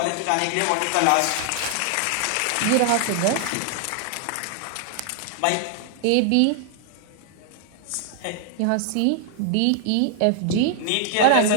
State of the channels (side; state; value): both; different; correlation 0.00